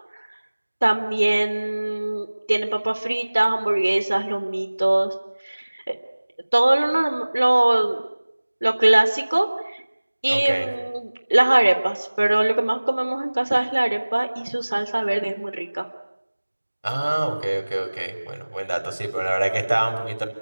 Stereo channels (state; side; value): inverted; both; correlation -1.00